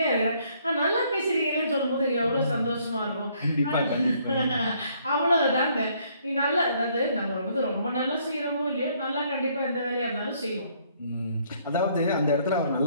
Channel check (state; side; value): inverted; both; correlation -0.66